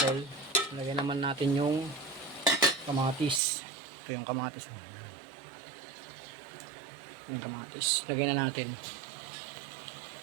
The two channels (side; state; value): left; drops out; at 3.4 s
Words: lagyan naman natin yung kamatis. Ito yung kamatis. Yung kamatis. Lagyan na natin.